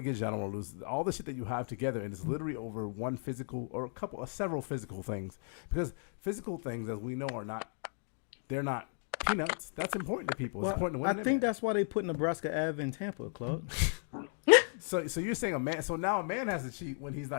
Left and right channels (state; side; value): silent; right; 54 dB below the other